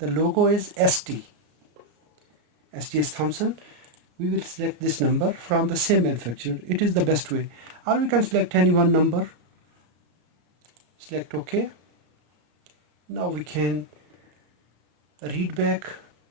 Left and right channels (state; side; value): late; left; 34 ms